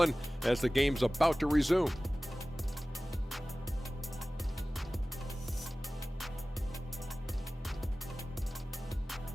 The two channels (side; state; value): both; normal; correlation 0.97